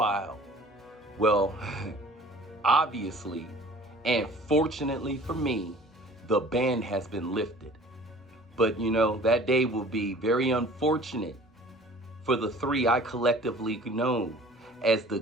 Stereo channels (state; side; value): normal; both; correlation 0.48